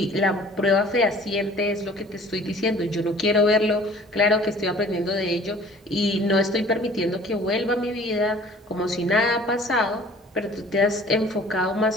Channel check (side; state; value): both; normal; correlation 0.50